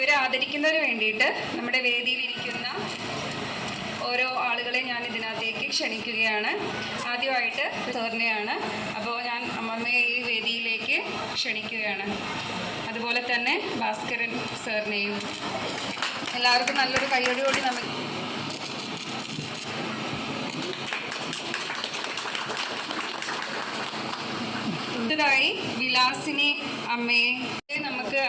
ആദരിക്കുന്നതിന് വേണ്ടിയിട്ട് നമ്മുടെ വേദിയിലിരിക്കുന്ന ഓരോ ആളുകളെ ഞാൻ ഇതിനകത്തേക്ക് ക്ഷണിക്കുകയാണ്. ആദ്യമായിട്ട് സാറിനെയാണ്. അപ്പോൾ ഞാൻ അമ്മമ്മയെ ഈ വേദിയിലേക്ക് ക്ഷണിക്കുകയാണ്. അതുപോലെ തന്നെ ഭാസ്കരൻ സാറിനെയും. എല്ലാവർക്കും നല്ലൊരു കയ്യടിയോടി നമുക്ക് ായി വിലാസിനി അമ്മയെ നമുക്ക്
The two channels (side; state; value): both; identical; correlation 1.00